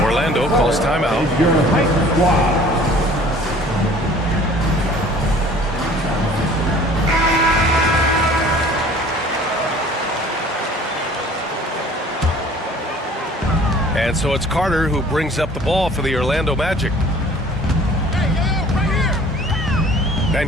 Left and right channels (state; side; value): normal; both; correlation 0.50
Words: Orlando calls timeout. And so it's Carter who brings up the ball for the Orlando Magic.